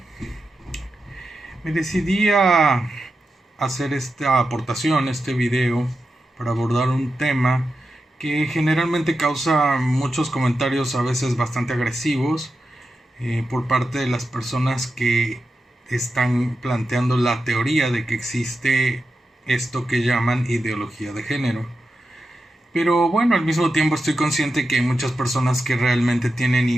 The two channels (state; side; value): normal; both; correlation 0.90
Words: Me decidí a hacer esta aportación, este video, para abordar un tema que generalmente causa muchos comentarios, a veces bastante agresivos, por parte de las personas que están planteando la teoría de que existe esto que llaman ideología de género. Pero bueno, al mismo tiempo estoy consciente que hay muchas personas que realmente